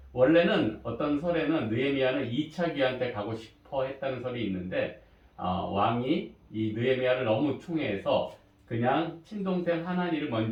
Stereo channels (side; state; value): both; identical; correlation 1.00